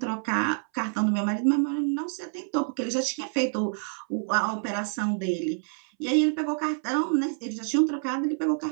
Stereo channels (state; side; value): silent; left; 60 dB below the other